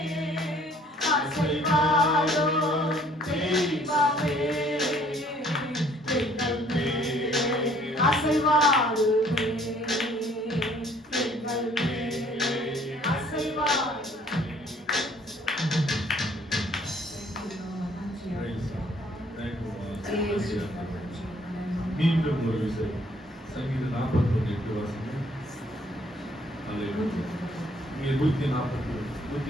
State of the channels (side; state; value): both; normal; correlation 0.60